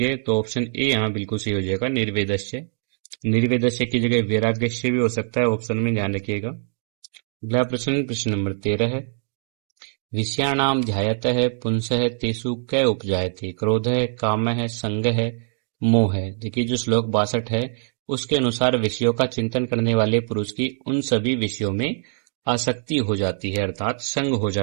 तो ऑप्शन ए यहाँ बिल्कुल सही हो जाएगा, निर्वेदस्य। निर्वेदस्य की जगह वैराग्यस्य भी हो सकता है, ऑप्शन में ध्यान रखिएगा। अगला प्रश्न, प्रश्न नंबर 13 है, विषयाणाम ध्यायतः पुंसः तेषु कै उपजायते, क्रोध है, काम है, संग है, मोह है। देखिए जो श्लोक 62 है उसके अनुसार विषयों का चिंतन करने वाले पुरुष की उन सभी विषयों में आसक्ति हो जाती है, अर्थात संग हो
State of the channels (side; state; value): left; silent; 63 dB below the other